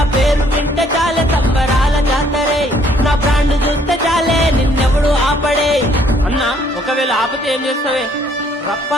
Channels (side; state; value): both; normal; correlation 0.64